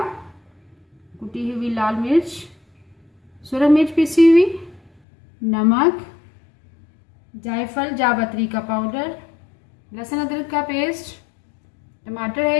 कुटी हुई लाल मिर्च, सुरख मिर्च पीसी हुई, नमक, जायफल जावित्री का पाउडर, लहसुन अदरक का पेस्ट, टमाटर है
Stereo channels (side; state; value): right; drops out; at 4.9 s